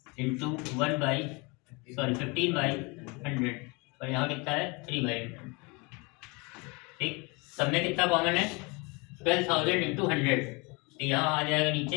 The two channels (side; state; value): right; quieter; 28.4 dB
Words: into 15/100 और यहाँ कितना है 3/100। ठीक, सब में कितना कॉमन है, 12000 इंटू 100, तो यहाँ आ जाएगा